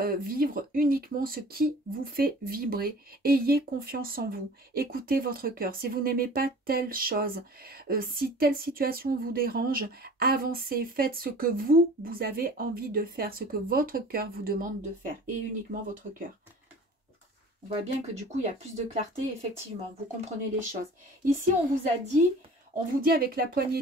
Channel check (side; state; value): both; normal; correlation 0.44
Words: vivre uniquement ce qui vous fait vibrer. Ayez confiance en vous. Écoutez votre cœur. Si vous n'aimez pas telle chose, si telle situation vous dérange, avancez. Faites ce que vous avez envie de faire, ce que votre cœur vous demande de faire. Et uniquement votre cœur. On voit bien que du coup, il y a plus de clarté, effectivement. Vous comprenez les choses. Ici, on vous dit avec la